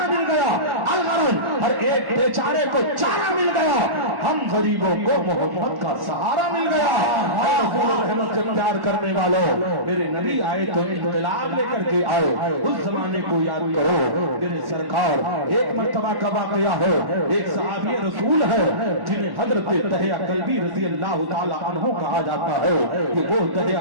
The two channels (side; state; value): left; late; 1.1 ms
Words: مل گیا, الغرض ہر ایک بیچارے کو چارہ مل گیا, ہم غریبوں کو محمد کا سہارا مل گیا. رحمت سے پیار کرنے والوں میرے نبی آئے تو انقلاب لے کر کے آئے. اس زمانے کو یاد کرو میرے سرکار. ایک مرتبہ کا واقعہ ہے, ایک صحابی رسول ہے جنہیں حضرت دحیہ کلبی رضی اللہ تعالی عنہ کہا جاتا ہے کہ وہ دحیہ